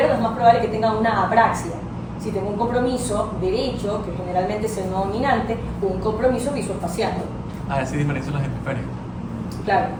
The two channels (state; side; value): identical; both; correlation 1.00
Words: es más probable que tenga una apraxia. Si tengo un compromiso derecho, que generalmente es el no dominante, un compromiso visoespacial. Así diferencian los hemisferios. Claro,